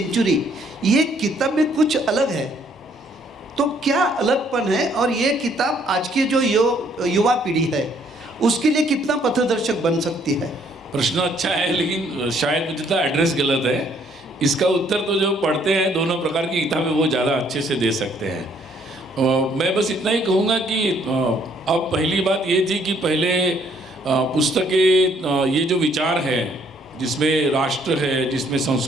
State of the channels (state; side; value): normal; both; correlation 0.65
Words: ये किताब में कुछ अलग है। तो क्या अलगपन है, और ये किताब आज की जो युवा पीढ़ी है उसके लिए कितना पथदर्शक बन सकती है? प्रश्न अच्छा है, लेकिन शायद मुझे तो एड्रेस गलत है। इसका उत्तर तो जो पढ़ते हैं दोनों प्रकार की किताबें वो ज़्यादा अच्छे से दे सकते हैं। मैं बस इतना ही कहूँगा कि अब पहली बात ये थी कि पहले पुस्तकें, ये जो विचार है जिसमें राष्ट्र है, जिसमें